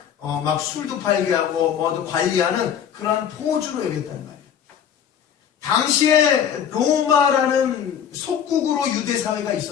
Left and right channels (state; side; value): quieter; right; 8.6 dB